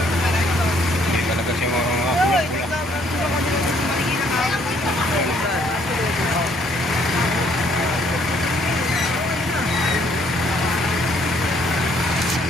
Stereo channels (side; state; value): both; normal; correlation 0.65